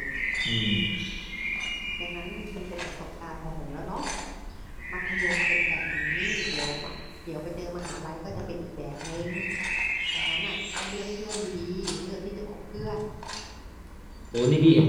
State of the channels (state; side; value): identical; both; correlation 1.00